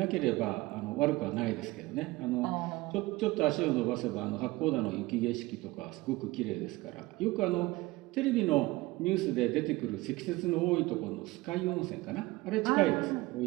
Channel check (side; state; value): left; quieter; 20.5 dB